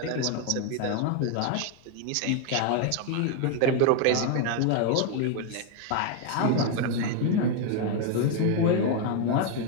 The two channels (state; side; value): different; both; correlation 0.01